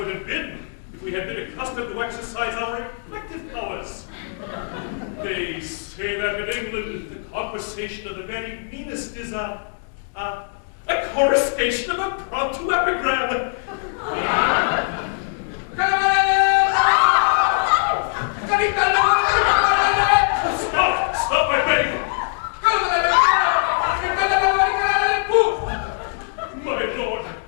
have been if we had been accustomed to exercise our reflective powers. They say that in England, the conversation of the very meanest is a coruscation of impromptu epigram. Stop, I beg. My lord,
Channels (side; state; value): right; silent; 64 dB below the other